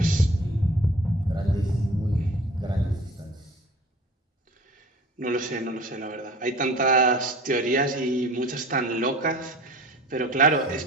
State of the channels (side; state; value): both; normal; correlation 0.43